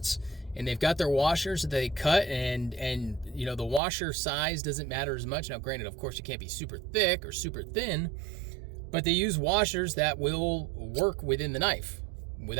and they've got their washers that they cut, and you know, the washer size doesn't matter as much. Now, granted, of course, you can't be super thick or super thin, but they use washers that will work within the knife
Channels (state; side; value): drops out; left; at 3.8 s